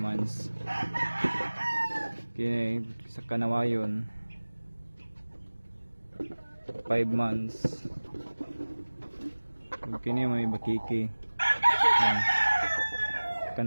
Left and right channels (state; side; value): inverted; both; correlation -1.00